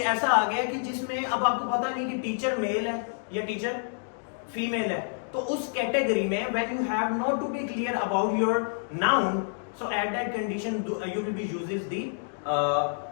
ऐसा आ गया कि जिसमें अब आपको पता नहीं कि टीचर मेल है या टीचर फीमेल है, तो उस कैटेगरी में when you have not to be clear about your noun, so at that condition you will be uses the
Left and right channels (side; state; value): right; silent; digital silence